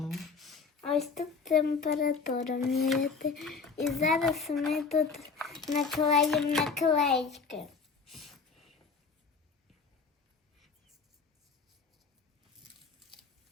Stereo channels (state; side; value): quieter; right; 5.0 dB